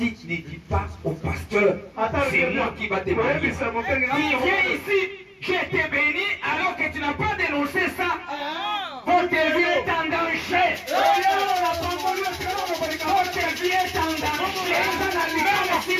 ne dis pas au pasteur, c'est moi qui va te bénir. Il vient ici, je t'ai béni alors que tu n'as pas dénoncé ça. Votre vie est en danger. Votre vie est en danger. Même si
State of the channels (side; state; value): both; identical; correlation 1.00